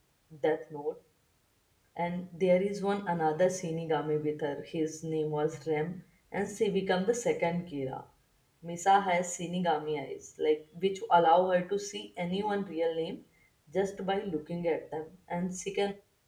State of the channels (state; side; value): identical; both; correlation 1.00